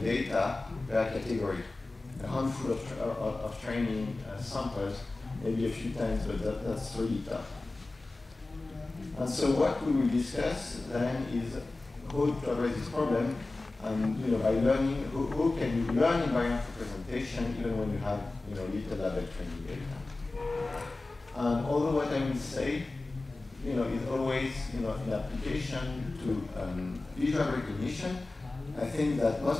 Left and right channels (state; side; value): quieter; right; 3.1 dB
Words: per category. A handful of training samples, maybe a few times, but that's really tough. And so what we will discuss then is how to address this problem, and by learning, how can you learn invariant representation even when you have little label training data. And although what I will say is always in application to visual recognition, I think that